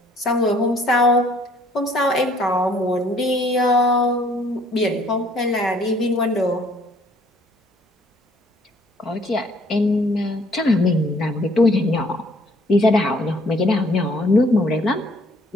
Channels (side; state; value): both; normal; correlation 0.61